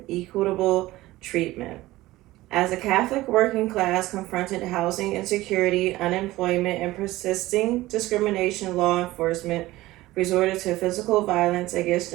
equitable treatment. As the Catholic working class confronted housing insecurity, unemployment, and persisting discrimination, law enforcement resorted to physical violence against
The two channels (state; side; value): quieter; left; 17.7 dB